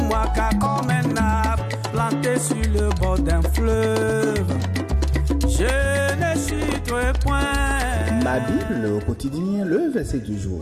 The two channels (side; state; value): both; identical; correlation 1.00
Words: Car comme un arbre planté sur le bord d'un fleuve, je ne chuterai point. Ma Bible au quotidien, le verset du